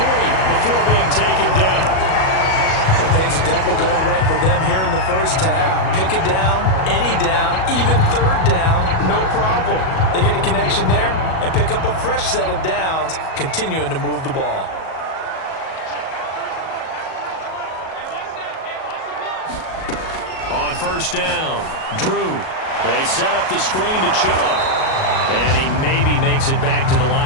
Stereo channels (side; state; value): right; late; 37 ms